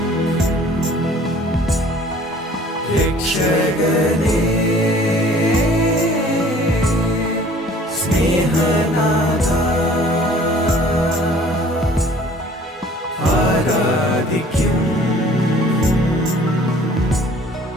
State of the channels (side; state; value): both; normal; correlation 0.52